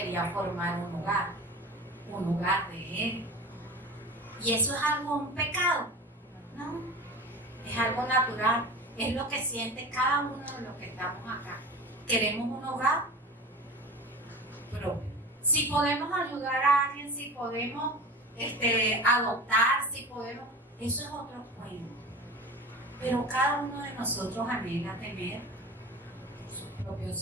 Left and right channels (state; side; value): normal; both; correlation 0.34